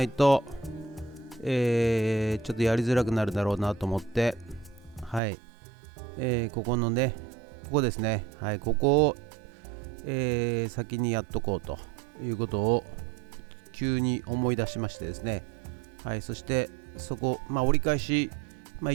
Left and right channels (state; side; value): drops out; left; at 5.2 s